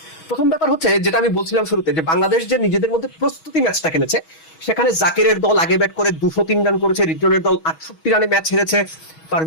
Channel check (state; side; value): late; right; 6.2 ms